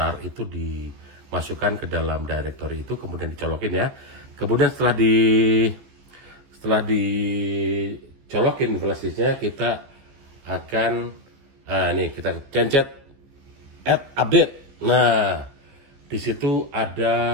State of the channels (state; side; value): late; left; 15 ms